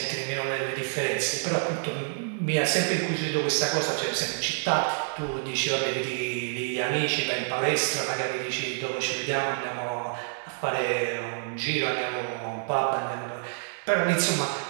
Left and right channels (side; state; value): left; silent; 59 dB below the other